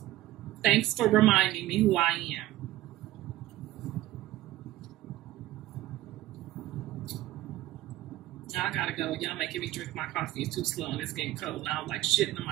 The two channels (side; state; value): left; quieter; 15.4 dB